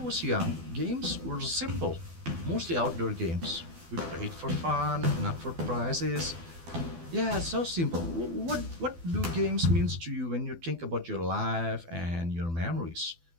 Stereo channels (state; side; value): late; left; 12 ms